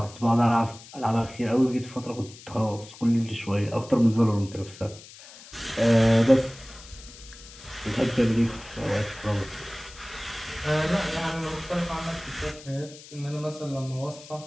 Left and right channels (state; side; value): noise; left; hiss, 18 dB below the sound